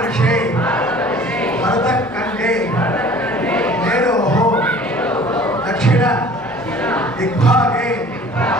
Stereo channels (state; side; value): normal; both; correlation 0.48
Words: భరతఖండే మేరోః దక్షిణ దిగ్భాగే